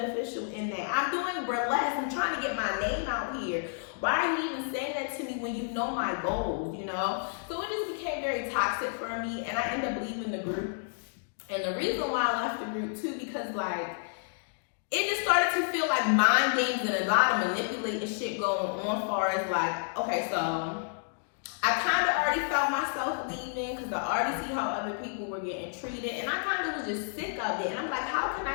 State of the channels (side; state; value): right; silent; digital silence